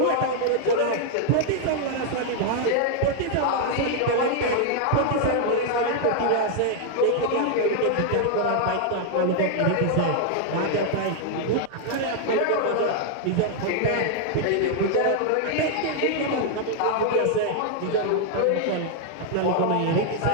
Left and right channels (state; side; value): different; both; correlation 0.00